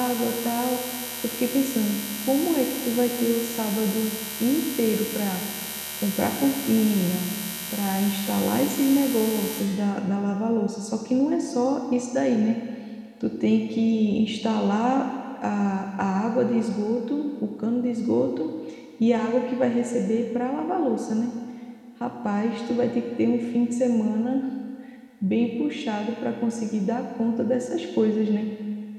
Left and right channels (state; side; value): identical; both; correlation 1.00